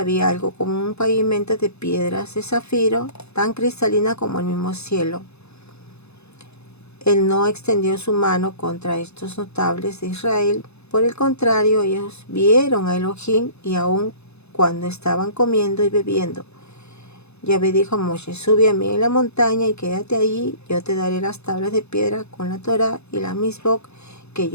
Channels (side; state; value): right; late; 0.80 ms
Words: algo como un pavimento de piedras de zafiro, tan cristalina como el mismo cielo. Él no extendió su mano contra estos notables de Israel. Por el contrario, ellos vieron a Elohim y aun cuando estaban comiendo y bebiendo. Yahvé dijo a Moshe: sube a mí en la montaña y quédate allí. Yo te daré las tablas de piedra con la Torá y la Misbok que